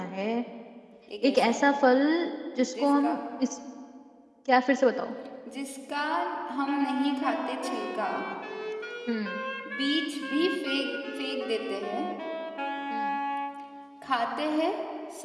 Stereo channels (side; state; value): both; identical; correlation 1.00